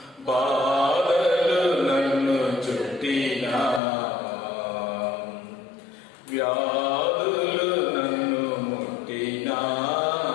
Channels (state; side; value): drops out; right; at 3.8 s